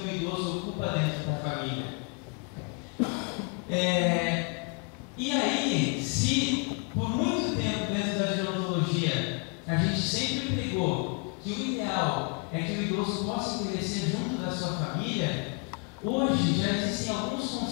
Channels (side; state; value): right; quieter; 32.6 dB